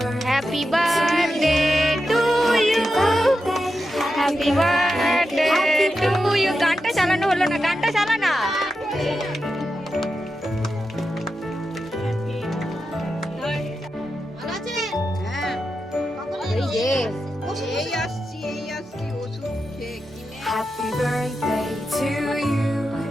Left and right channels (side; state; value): both; normal; correlation 0.89